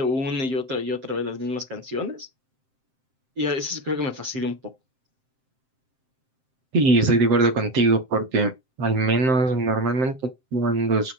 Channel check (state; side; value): late; left; 7.7 ms